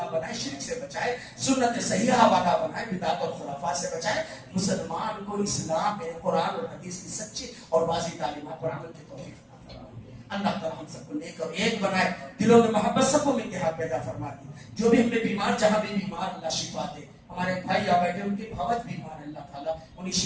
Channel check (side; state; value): both; identical; correlation 1.00